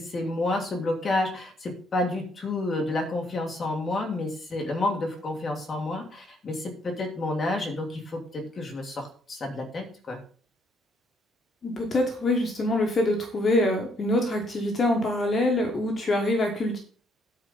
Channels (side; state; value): both; normal; correlation 0.70